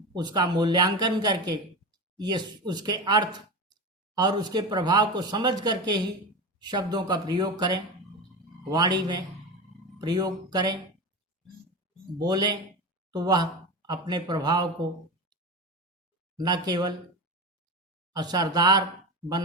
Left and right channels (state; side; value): normal; both; correlation 0.23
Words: उसका मूल्यांकन करके ये उसके अर्थ और उसके प्रभाव को समझ करके ही शब्दों का प्रयोग करें, वाणी में प्रयोग करें, बोलें, तो वह अपने प्रभाव को न केवल असरदार